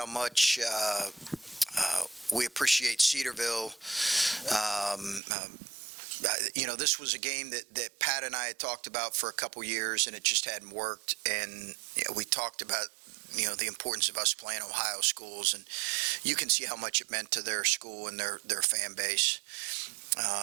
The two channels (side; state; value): left; drops out; at 5.2 s